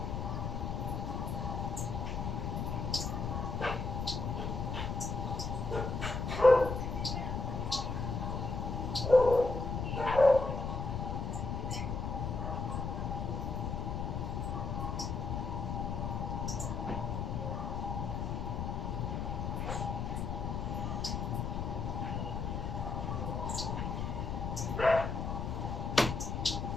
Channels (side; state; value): left; noise; rumble, 2 dB below the sound